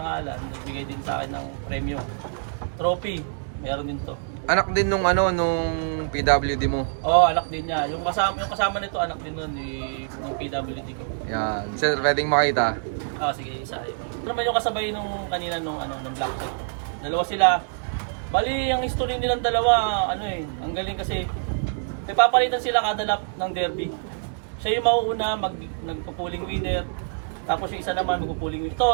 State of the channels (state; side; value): silent; left; digital silence